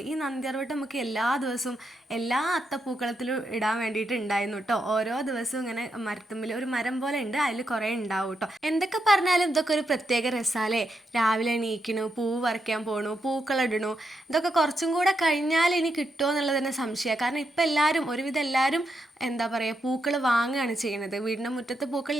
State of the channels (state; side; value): normal; both; correlation 0.82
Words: ഈ നന്ദ്യാർവട്ടം നമുക്ക് എല്ലാ ദിവസവും എല്ലാ അത്തപ്പൂക്കളത്തിലും ഇടാൻ വേണ്ടിയിട്ട് ഉണ്ടായിരുന്നു കേട്ടോ. ഓരോ ദിവസവും ഇങ്ങനെ മരത്തുമ്പിൽ ഒരു മരം പോലെ ഉണ്ട്, അതിൽ കുറേ ഉണ്ടാവും കേട്ടോ. എന്തൊക്കെ പറഞ്ഞാലും ഇതൊക്കെ ഒരു പ്രത്യേക രസാലേ. രാവിലെ എണീക്കണു, പൂവ് പറിക്കാൻ പോണു, പൂക്കളിടണു. ഇതൊക്കെ കുറച്ചും കൂടെ കഴിഞ്ഞാൽ ഇനി കിട്ടുമോ എന്നുള്ളത് തന്നെ സംശയമാണ്. കാരണം ഇപ്പം എല്ലാവരും, ഒരുവിധം എല്ലാവരും എന്താ പറയുക, പൂക്കൾ വാങ്ങുകയാണ് ചെയ്യുന്നത്. വീടിൻ്റെ മുറ്റത്ത് പൂക്കൾ